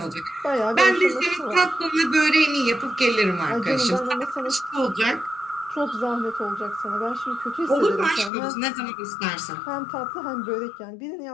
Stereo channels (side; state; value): right; drops out; at 8.3 s